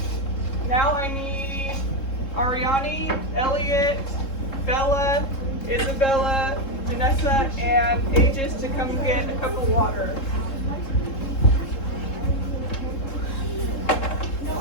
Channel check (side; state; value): right; late; 3.7 ms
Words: Now I need Ariani, Elliot, Bella, Isabella, Vanessa, and Aegis to come get a cup of water.